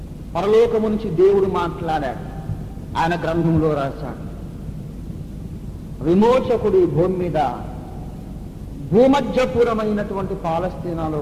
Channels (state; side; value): identical; both; correlation 1.00